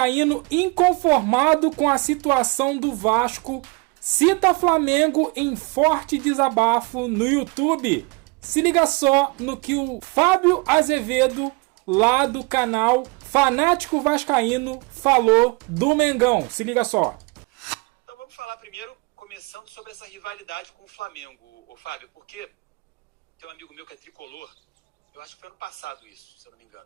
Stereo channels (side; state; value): left; quieter; 28.5 dB